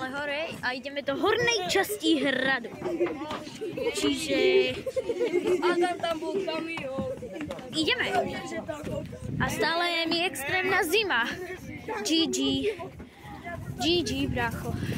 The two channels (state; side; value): identical; both; correlation 1.00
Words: hore a ideme do hornej časti hradu. Čiže... Tam bol kamión. Ideme. A stále je mi extrémna zima. GG. GG, bracho.